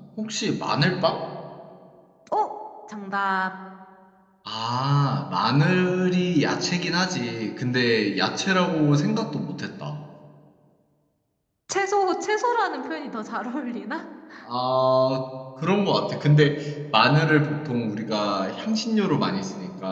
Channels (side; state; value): both; identical; correlation 1.00